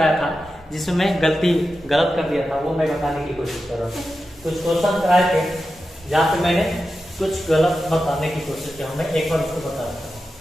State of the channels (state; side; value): normal; both; correlation 0.91